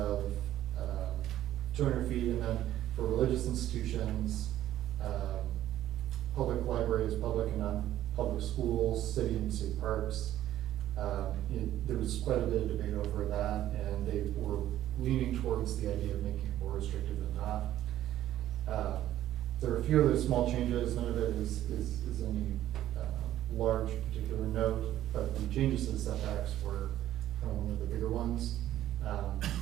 200 feet, and then for religious institutions, public libraries, public and non-public schools, city and state parks. There was quite a bit of debate over that, and they were leaning towards the idea of making it more restrictive than not. There are a few other small changes. None of it is any large particular note, but the changes to the setbacks were kind of one of the bigger ones.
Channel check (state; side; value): quieter; left; 12.9 dB